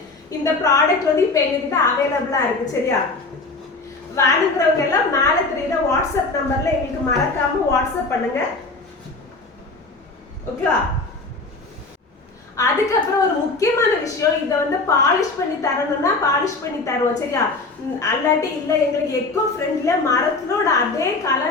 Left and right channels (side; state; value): right; quieter; 3.5 dB